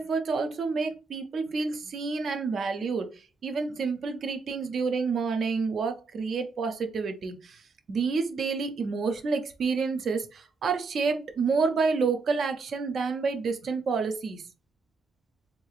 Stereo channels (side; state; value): left; quieter; 4.4 dB